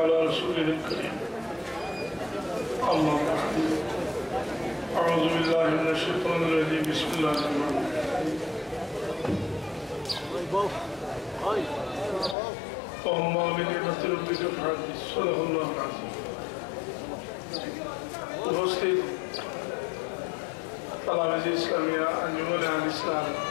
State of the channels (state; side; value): drops out; right; at 12.4 s